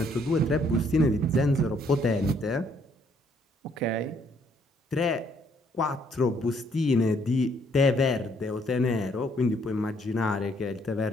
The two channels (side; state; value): both; normal; correlation 0.67